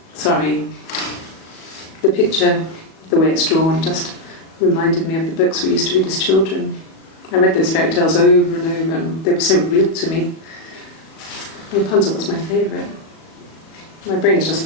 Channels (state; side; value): late; right; 37 ms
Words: Sorry. The picture, the way it's drawn, just reminded me of the books we used to read as children. I read those fairy tales over and over, and they were so real to me. Rapunzel was my favourite. My brain is just